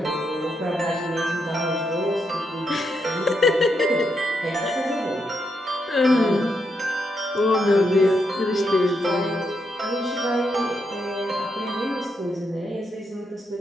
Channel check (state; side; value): normal; both; correlation 0.81